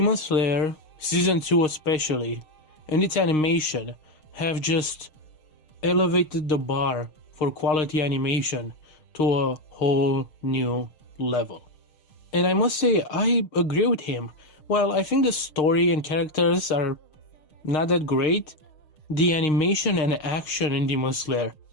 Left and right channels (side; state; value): right; late; 6.5 ms